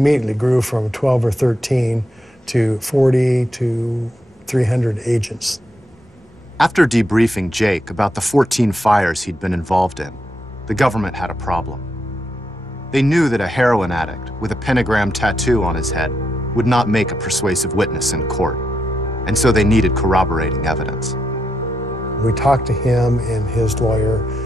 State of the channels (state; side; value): normal; both; correlation 0.81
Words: grew from 12 or 13 to 40 to 300 agents. After debriefing Jake about the 14 fires he'd been involved in, the government had a problem. They knew that a heroin addict with a pentagram tattoo on his head would not make a persuasive witness in court, and so they needed corroborating evidence. We talked to him and his lawyer,